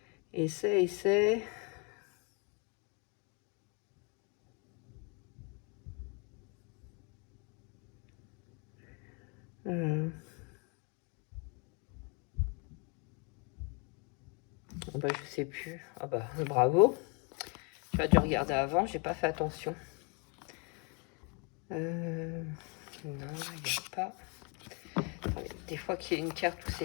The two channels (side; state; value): right; quieter; 34.1 dB